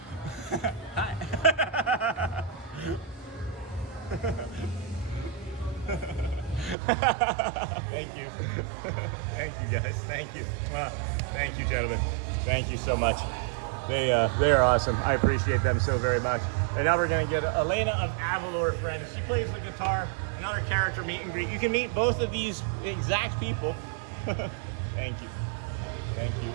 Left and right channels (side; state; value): left; drops out; at 6.8 s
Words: Hi. Thank you. Thank you, guys. Thank you. Thank you, gentlemen. Thank you so much. They are awesome. I appreciate them so very much. And now we're going to get Elena of Avalor, friends. She plays the guitar. Another character meet and greet. You can meet both of these exact people. Thank you. Thank you.